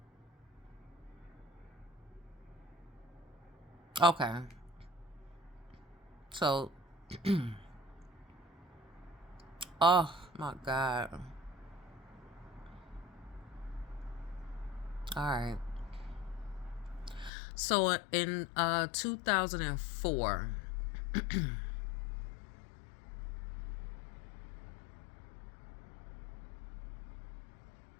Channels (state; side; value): drops out; right; at 17.3 s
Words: Okay. So, oh my God. All right. So in 2004,